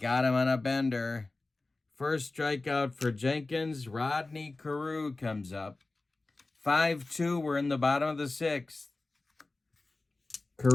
him on a bender. First strikeout for Jenkins. Rodney Carew comes up. 5-2. We're in the bottom of the 6th.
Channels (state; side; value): quieter; right; 3.2 dB